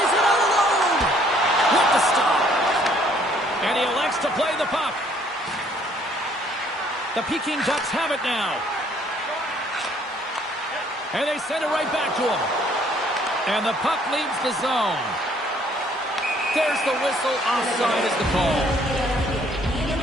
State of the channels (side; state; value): both; normal; correlation 0.62